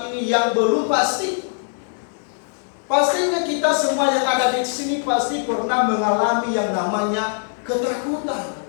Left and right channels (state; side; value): silent; right; 63 dB below the other